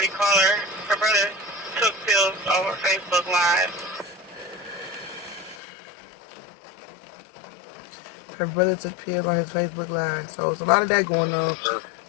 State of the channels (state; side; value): drops out; right; at 5.6 s